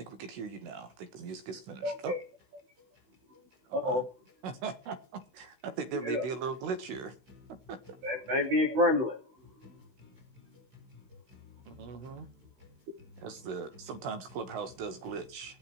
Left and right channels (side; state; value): left; late; 16 ms